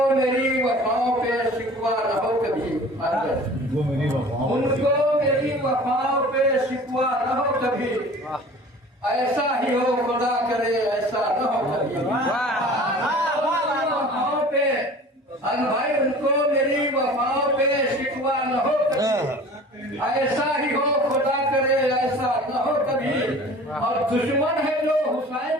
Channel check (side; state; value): both; normal; correlation 0.43